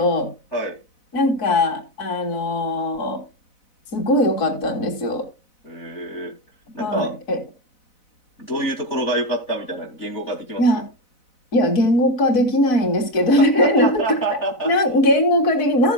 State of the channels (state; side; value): late; right; 4.0 ms